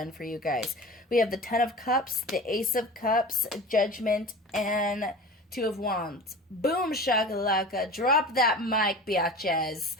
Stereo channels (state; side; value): normal; both; correlation 0.35